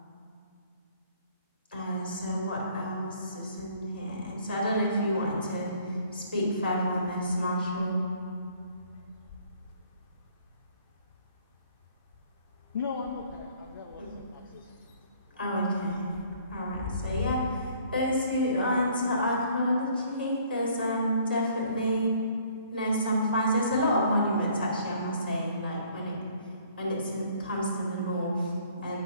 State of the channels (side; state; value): both; inverted; correlation -0.59